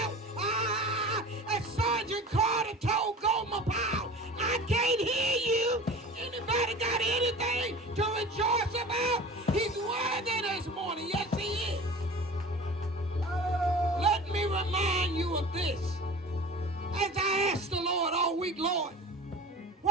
As Sergeant Carter told Gomer Powell, I can't hear you. Anybody got anything to rejoice about? He's worthy this morning. Yes, he is. Let me remind you of this. As I asked the Lord all week, Lord,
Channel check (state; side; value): normal; both; correlation 0.38